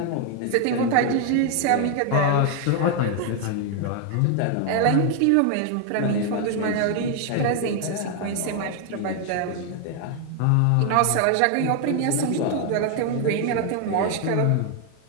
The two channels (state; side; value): different; both; correlation 0.00